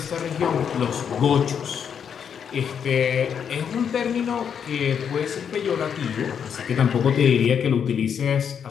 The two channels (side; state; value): right; quieter; 7.6 dB